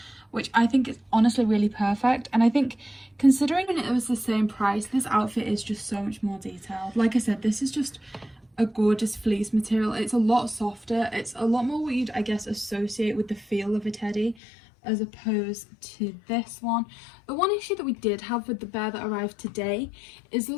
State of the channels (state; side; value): drops out; right; at 14.4 s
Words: which I think is honestly really perfect. And I think considering it was the same price, this outfit is just so much more detailed. Like I said, this is just a gorgeous fleece material. It's a lot softer. It's a lot more what you'd, I guess, associate with the feel of a teddy as opposed to this one. The one issue that we did have with the bear that arrived today is there